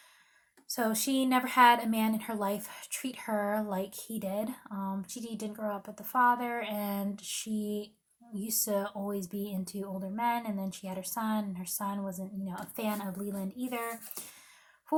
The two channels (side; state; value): both; identical; correlation 1.00